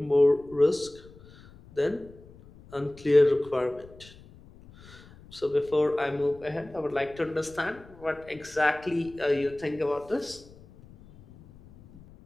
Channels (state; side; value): noise; left; rumble, 22 dB below the sound